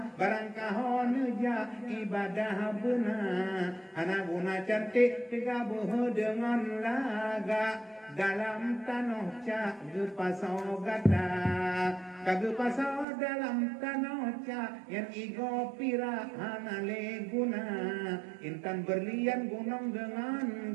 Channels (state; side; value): drops out; left; at 13.1 s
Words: barang kahon ja ibadah benar Hana guna cantik digabuh dengan laga dalam tanah cak gepasau gata kagepasau dalam tanah cak yang igo pira hanale guna intan berlian gunung